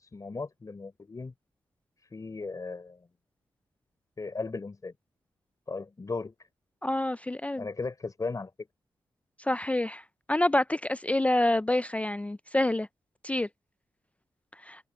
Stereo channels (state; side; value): normal; both; correlation 0.93